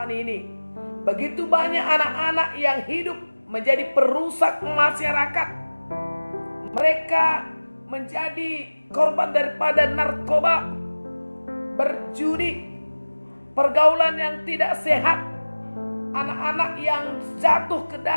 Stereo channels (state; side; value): inverted; both; correlation -1.00